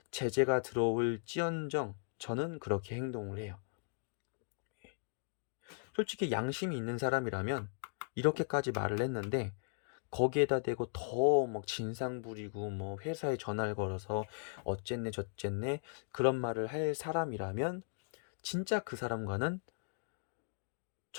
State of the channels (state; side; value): silent; right; digital silence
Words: 제재가 들어올지언정 저는 그렇게 행동을 해요. 솔직히 양심이 있는 사람이라면 이렇게까지 말을 했는데 거기에다 대고 더 막 진상 부리고 회사에 전화를 걸어서 어쨌네 저쨌네 그런 말을 할 사람이라면 진짜 그 사람과는